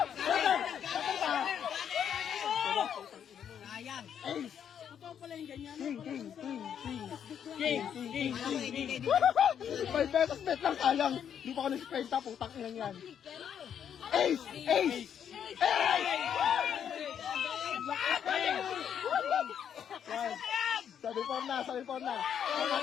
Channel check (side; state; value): right; quieter; 8.6 dB